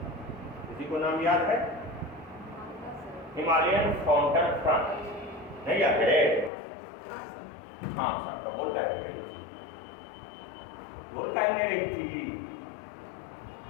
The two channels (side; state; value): right; drops out; at 6.5 s